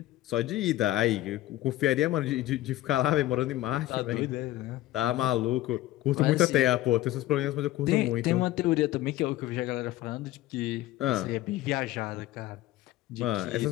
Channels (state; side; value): quieter; right; 15.6 dB